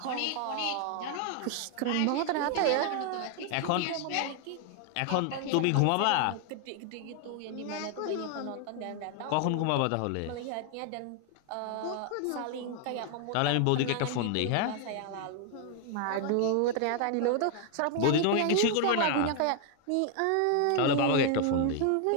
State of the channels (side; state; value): both; different; correlation 0.00